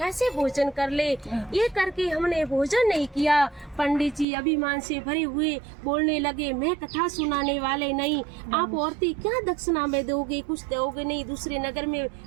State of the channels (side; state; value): left; drops out; at 4.2 s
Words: भोजन कर ले। ये करके हमने भोजन नहीं किया। पंडित जी अभिमान से भरे हुए बोलने लगे, मैं कथा सुनाने वाले नहीं, आप औरतें क्या दक्षिणा में दोगे, कुछ दोगे नहीं, दूसरे नगर में